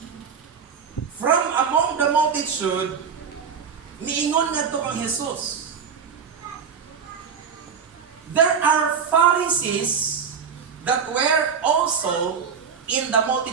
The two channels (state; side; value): quieter; left; 6.5 dB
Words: from among the multitude miingon ngadto kang Jesus. There are Pharisees that were also in the